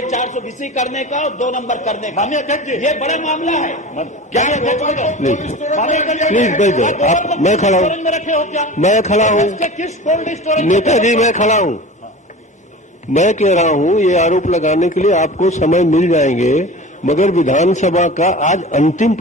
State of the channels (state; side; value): normal; both; correlation 0.35